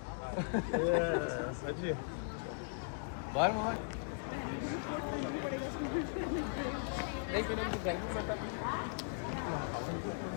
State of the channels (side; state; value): right; silent; digital silence